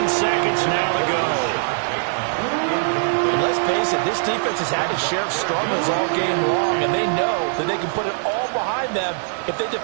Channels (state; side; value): silent; left; digital silence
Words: seconds now to go. And let's face it, this defense has had its share of struggles all game long, and they know that they can put it all behind them if they